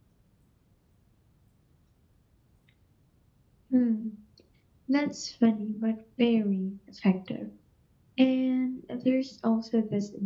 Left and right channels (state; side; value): identical; both; correlation 1.00